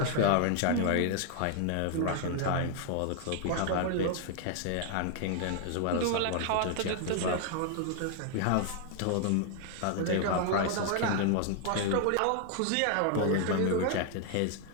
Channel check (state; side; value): different; both; correlation 0.00